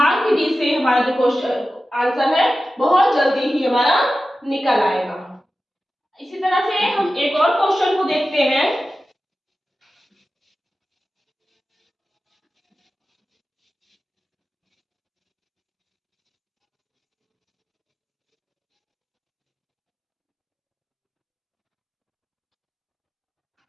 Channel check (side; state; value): both; normal; correlation 0.94